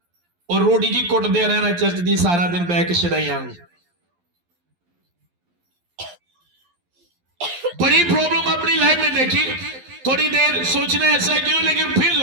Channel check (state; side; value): late; left; 11 ms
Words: और रोटी जी कुटदे रहना चर्च की सारा दिन बह के छड़ाइया। बड़ी प्रॉब्लम अपनी लाइफ में देखी, थोड़ी देर सोचना ऐसा क्यों, लेकिन फिर